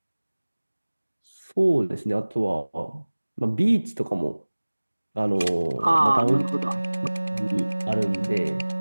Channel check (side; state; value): both; inverted; correlation -1.00